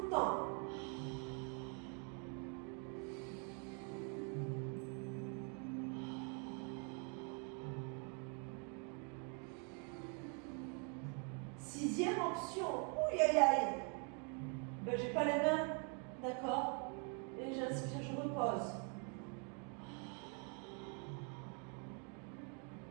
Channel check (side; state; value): left; quieter; 38.2 dB